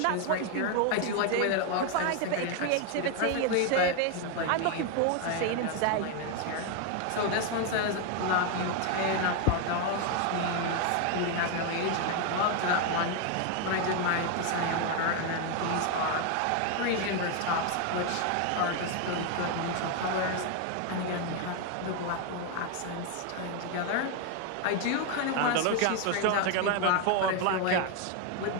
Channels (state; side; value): different; both; correlation 0.01